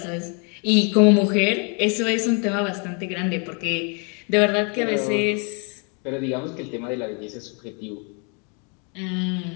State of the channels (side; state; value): right; quieter; 36.2 dB